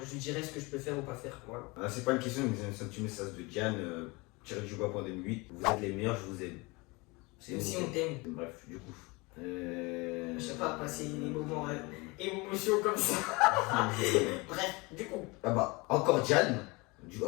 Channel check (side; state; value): right; quieter; 25.6 dB